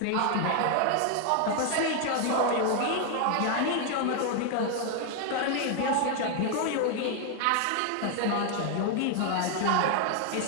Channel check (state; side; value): different; both; correlation 0.00